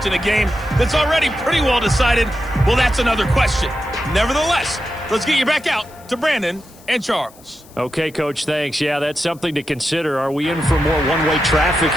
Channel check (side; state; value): left; noise; hiss, 25 dB below the sound